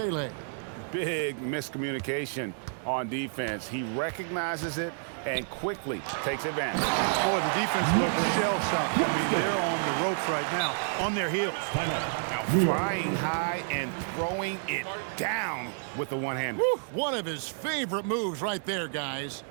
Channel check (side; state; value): left; silent; 58 dB below the other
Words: Big miscommunication on defense. He recognizes it and quickly takes advantage. Boy, the defense looks shell-shocked. I mean, they're on the ropes right now, on their heels. Now, flying high and throwing it down with the one-hander. One of his favorite moves right there, guys.